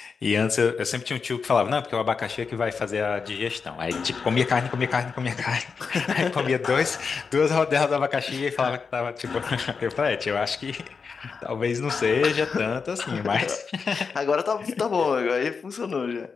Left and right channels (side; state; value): right; quieter; 5.4 dB